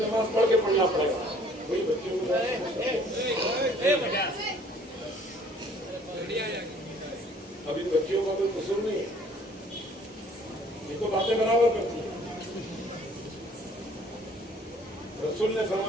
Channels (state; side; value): normal; both; correlation 0.56